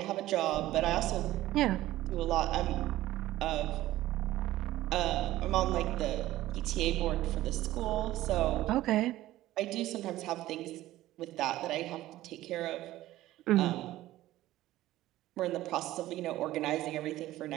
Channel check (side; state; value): left; quieter; 15.5 dB